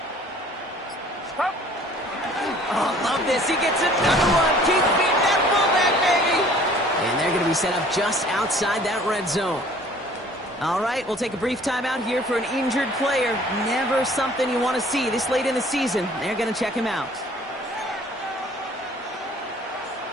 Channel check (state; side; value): normal; both; correlation 0.53